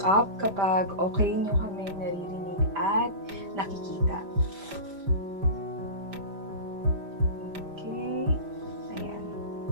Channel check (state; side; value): late; left; 5.0 ms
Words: kapag okay nyo kami naririnig at nakikita. Okay. Ayan.